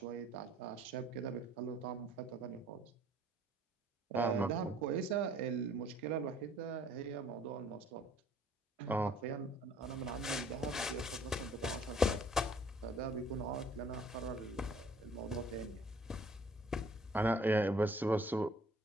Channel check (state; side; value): normal; both; correlation 0.57